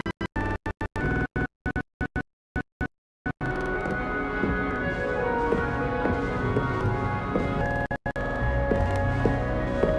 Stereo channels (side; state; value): both; identical; correlation 1.00